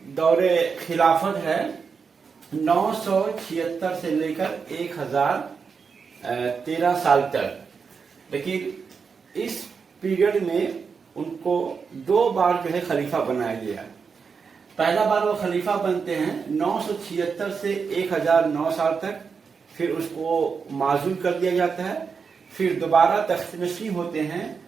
دور خلافت ہے 976 سے لے کر 1013 سال تک، لیکن اس پیریڈ میں ان کو دو بار جو ہے خلیفہ بنایا گیا۔ پہلا بار وہ خلیفہ بنتے ہیں 976 سے 1009 سال تک، پھر اس کو معزول کر دیا جاتا ہے، پھر دوبارہ تخت نشین ہوتے ہیں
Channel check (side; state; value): left; quieter; 5.6 dB